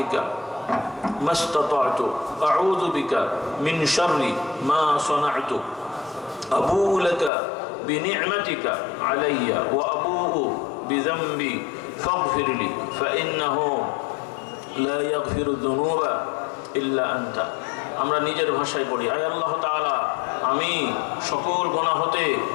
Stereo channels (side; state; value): right; drops out; at 7.3 s